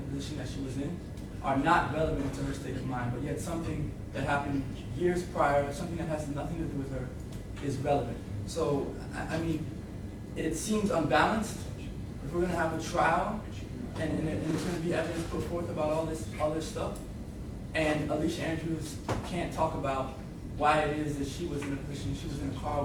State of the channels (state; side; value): identical; both; correlation 1.00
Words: position that she was in are not relevant to her state of mind. But yet something that happened years prior, something that has nothing to do with her, is relevant. So, I mean, it seems unbalanced. If we're going to have a trial, and there's going to be evidence put forth about all this stuff, and Alicia Andrews can't talk about why it is that she was in a position, she was in a car